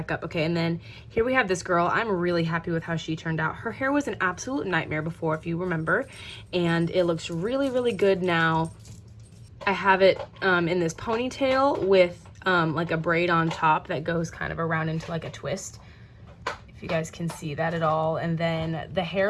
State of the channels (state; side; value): identical; both; correlation 1.00